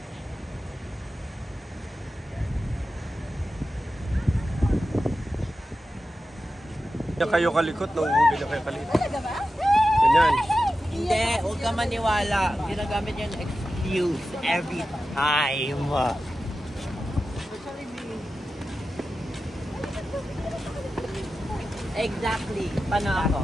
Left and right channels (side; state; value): both; normal; correlation 0.92